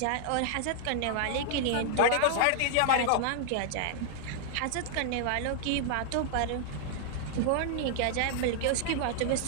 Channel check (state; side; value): different; both; correlation 0.00